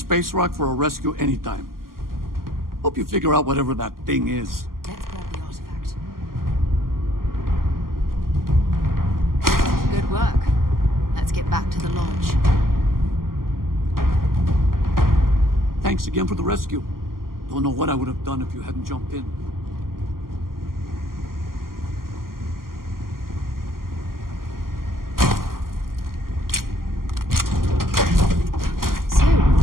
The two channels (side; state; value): left; late; 0.92 ms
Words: rock for a rescue anytime. Hope you figure out whatever that thing is. Let's grab the artifact. Good work. Let's get back to the lodge. Thanks again for the rescue. Don't know what I would have done if you hadn't jumped in. So,